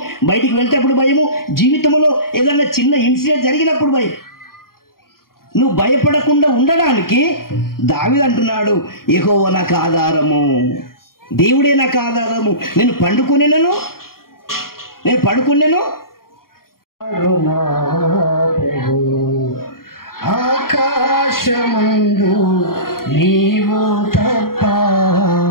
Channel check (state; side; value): late; right; 0.92 ms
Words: బయటికి వెళ్తేప్పుడు భయము, జీవితంలో ఏదన్నా చిన్న ఇన్సిడెంట్ జరిగినప్పుడు భయం. నువ్వు భయపడకుండా ఉండడానికి దావీదు అంటున్నాడు, యెహోవా నాకు ఆధారము, దేవుడే నాకు ఆధారము. నేను పడుకునేను ఆకాశమందు నీవు తప్ప